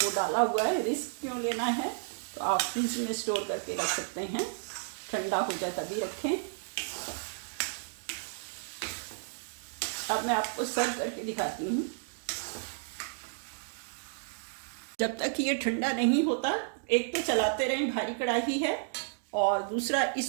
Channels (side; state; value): left; silent; digital silence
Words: वो डाला हुआ है, रिस्क क्यों लेना है। तो आप फ्रिज में स्टोर करके रख सकते हैं, ठंडा हो जाए तभी रखें। अब मैं आपको सर्व करके दिखाती हूँ। जब तक ये ठंडा नहीं होता, एक तो चलाते रहें, भारी कढ़ाई है, और दूसरा